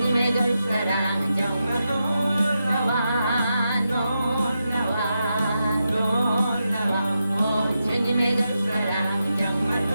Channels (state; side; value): inverted; both; correlation -0.87